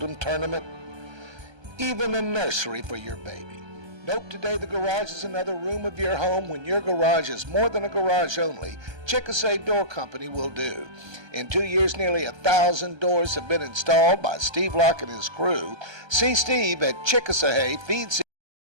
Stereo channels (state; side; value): late; left; 1.3 ms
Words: tournament, even a nursery for your baby. Nope, today the garage is another room of your home. When your garage is more than a garage only, Chickasawhay Door Company will do. In 2 years, nearly 1,000 doors have been installed by Steve Locke and his crew. See Steve at Chickasawhay Feed.